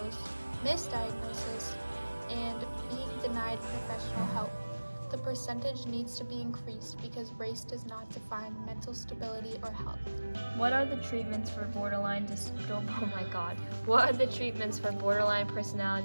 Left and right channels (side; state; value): both; inverted; correlation -1.00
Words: misdiagnosis, and being denied professional help. The percentage needs to be increased because race does not define mental stability or health. What are the treatments for borderline What are the treatments for borderline